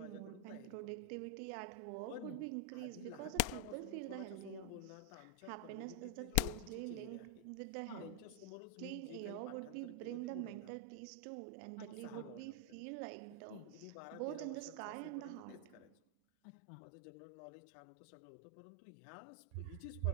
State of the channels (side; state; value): both; different; correlation 0.00